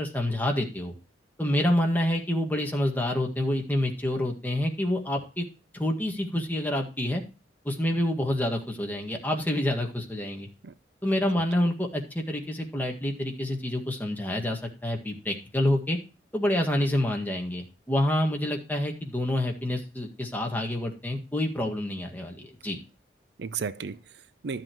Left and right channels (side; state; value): both; normal; correlation 0.81